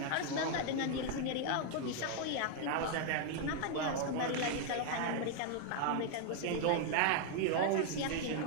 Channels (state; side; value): different; both; correlation 0.00